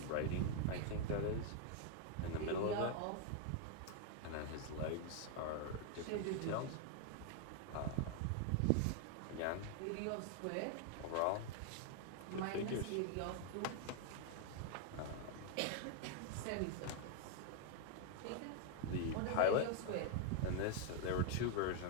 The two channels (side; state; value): both; different; correlation 0.00